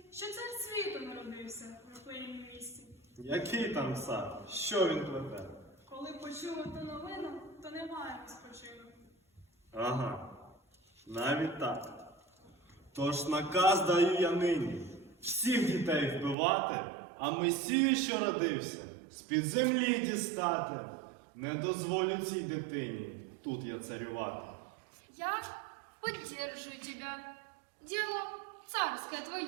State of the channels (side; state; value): left; drops out; at 16.4 s